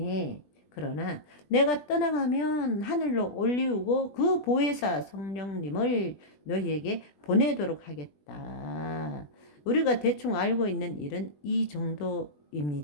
그러나 내가 떠나가면 하늘로 올리우고 그 보혜사 성령님을 너희에게 보내도록 하겠다. 우리가 대충 알고 있는 일은 이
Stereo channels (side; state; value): right; late; 20 ms